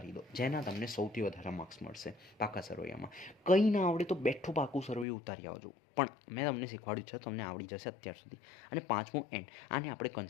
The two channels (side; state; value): right; drops out; at 5.1 s